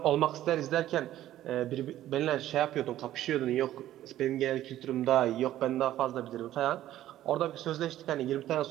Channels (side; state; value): left; quieter; 13.3 dB